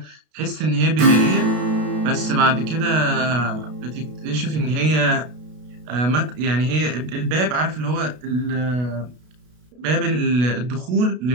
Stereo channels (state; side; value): late; left; 32 ms